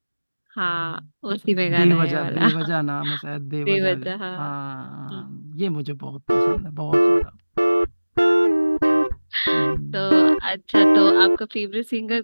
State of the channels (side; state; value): both; inverted; correlation -1.00